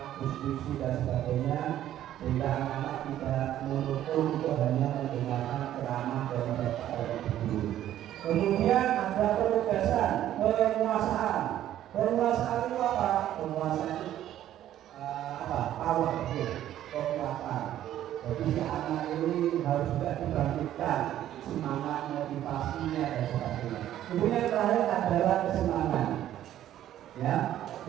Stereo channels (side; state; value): left; quieter; 12.2 dB